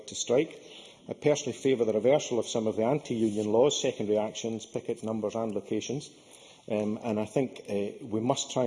to strike. I personally favour the reversal of some of the anti-union laws, secondary actions, picket numbers and locations. And I think we must try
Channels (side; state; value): both; identical; correlation 1.00